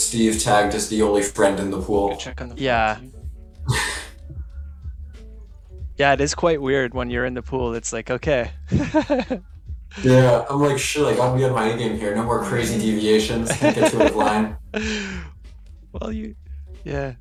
tagged as the only friend in the pool. Good check on the flop, Yeah. too. Yeah, it is quite weird when you're in the pool. It's like, okay. Yeah, I'm like, shit, I gotta be on my A game here. No more crazy deviations. Can't get to a line. Well, yeah.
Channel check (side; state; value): both; identical; correlation 1.00